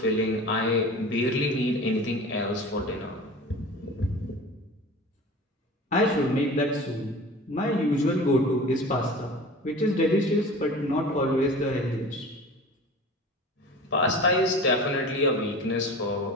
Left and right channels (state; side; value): normal; both; correlation 0.37